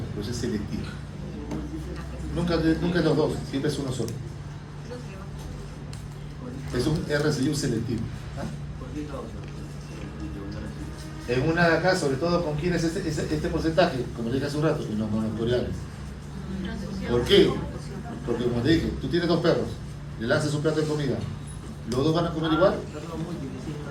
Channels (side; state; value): both; identical; correlation 1.00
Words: pero es selectivo. Nunca es los dos, siempre es uno solo. Es un RCI selectivo. ¿Ah? En una de acá, sobre todo con quienes este porcentaje, como le dije hace un rato, en los monocoriales. ¿Por qué? Porque como te dije, tú tienes dos perros, le lanzas un plato de comida, ¿los dos van a comer igual?